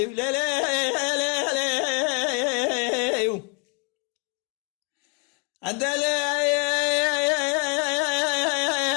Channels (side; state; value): right; quieter; 32.6 dB